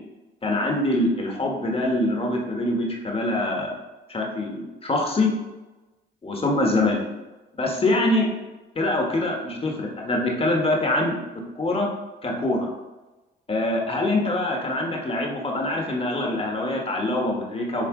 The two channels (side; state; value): both; normal; correlation 0.46